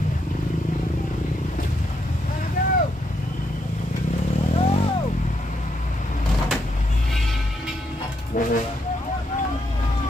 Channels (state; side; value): normal; both; correlation 0.78